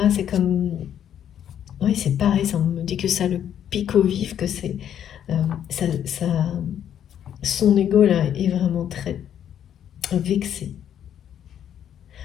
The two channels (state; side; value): quieter; right; 9.7 dB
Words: c'est comme... Oui, c'est pareil, ça, on me dit que ça le pique au vif, que c'est... ça, son ego là est vraiment très vexé.